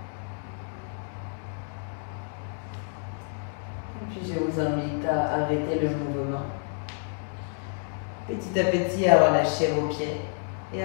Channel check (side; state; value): right; silent; 57 dB below the other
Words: Et puis je vous invite à arrêter le mouvement. Petit à petit, à relâcher vos pieds et